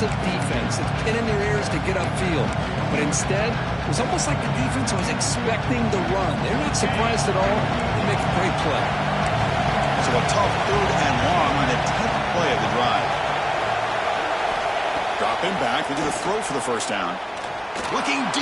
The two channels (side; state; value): both; identical; correlation 1.00